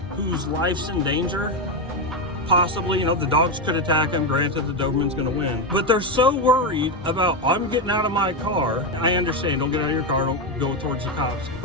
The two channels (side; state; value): both; normal; correlation 0.09